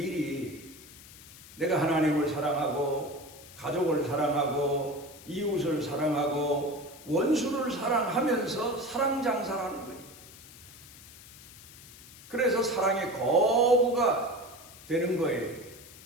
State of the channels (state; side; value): noise; left; hiss, 19 dB below the sound